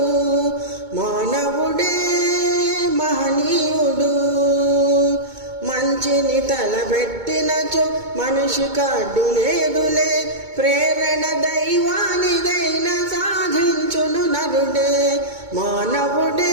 మానవుడే మహనీయుడు మంచిని తలబెట్టినచో మనిషికి అడ్డులేదులే ప్రేరణ దైవానిదైన సాధించును నరుడే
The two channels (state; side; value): late; left; 2.2 ms